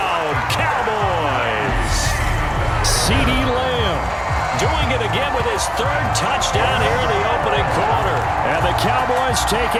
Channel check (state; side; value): identical; both; correlation 1.00